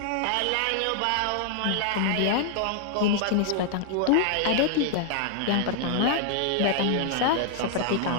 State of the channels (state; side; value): different; both; correlation 0.00